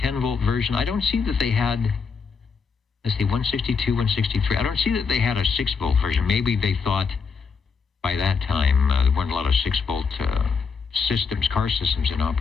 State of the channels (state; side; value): quieter; right; 5.4 dB